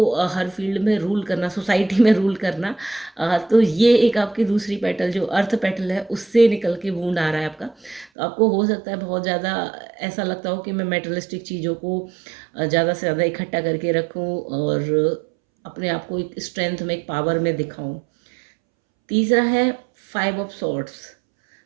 हर फील्ड में रूल करना, सोसाइटी में रूल करना। तो ये एक आपकी दूसरी पेटल जो अर्थ पेटल है उससे निकल के वूंड आ रहा है आपका। तो आपको हो सकता है बहुत ज़्यादा ऐसा लगता हो कि मैं मेटलिस्टिक चीज़ों को ज़्यादा से ज़्यादा इकट्ठा करके रखूं और अपने आप को एक स्ट्रेंथ में, एक पावर में दिखाऊं। तीसरा है 5 ऑफ सॉर्ड्स।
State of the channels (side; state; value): left; drops out; at 8.1 s